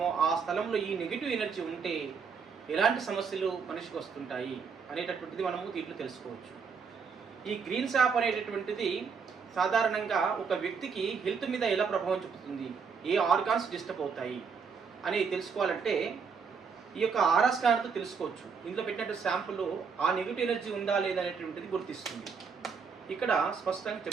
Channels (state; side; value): quieter; left; 5.8 dB